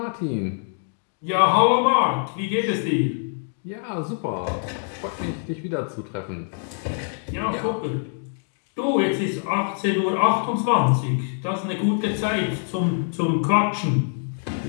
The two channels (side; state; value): right; silent; 59 dB below the other